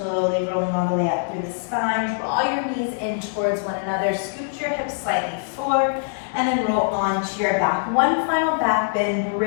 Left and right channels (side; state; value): right; silent; digital silence